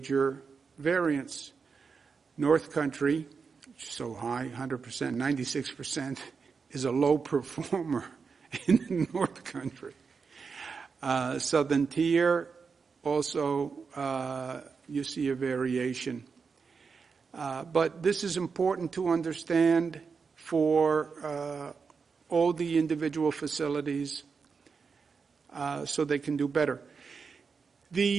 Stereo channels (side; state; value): left; quieter; 5.3 dB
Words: variance. North Country, which is so high, 100%, 96%, is a low performer in the North Country. Southern Tier, also you see a variation. But this is important to understand for all the individual facilities so they can do better.